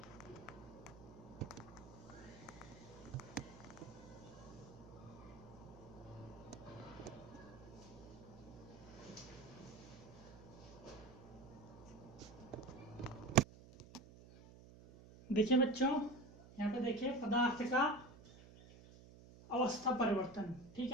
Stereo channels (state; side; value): noise; right; hum, 18 dB below the sound